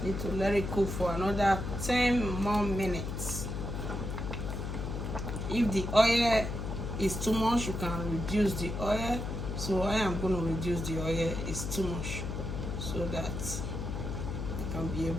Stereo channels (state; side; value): noise; left; hum, 4 dB below the sound